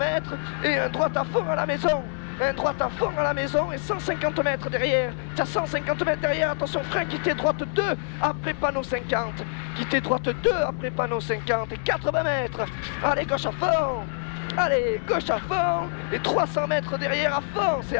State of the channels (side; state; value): right; silent; digital silence